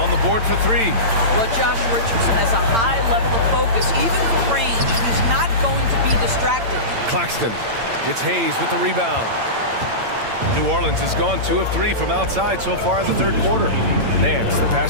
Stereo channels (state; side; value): late; left; 8.8 ms